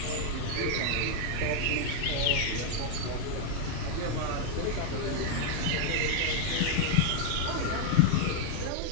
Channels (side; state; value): both; different; correlation 0.00